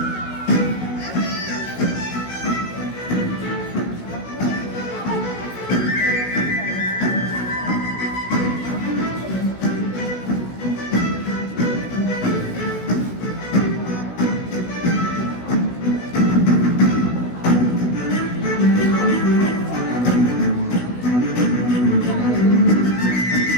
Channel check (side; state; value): right; late; 16 ms